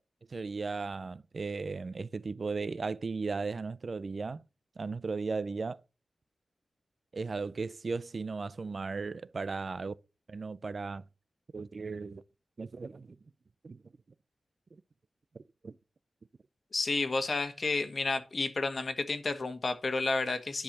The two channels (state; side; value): normal; both; correlation 0.91